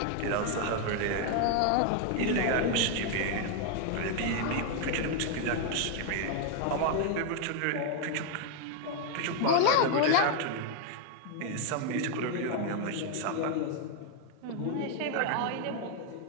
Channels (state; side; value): different; both; correlation 0.00